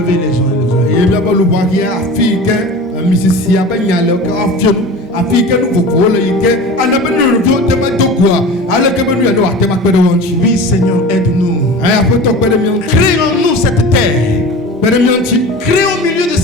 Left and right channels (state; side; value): normal; both; correlation 0.35